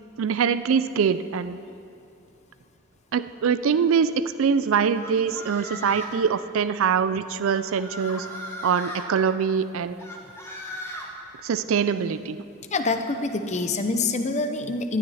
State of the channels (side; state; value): left; quieter; 4.5 dB